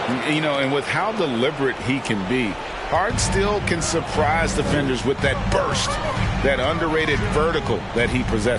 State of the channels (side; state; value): both; identical; correlation 1.00